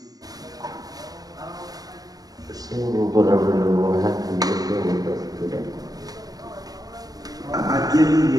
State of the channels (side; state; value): left; late; 0.18 ms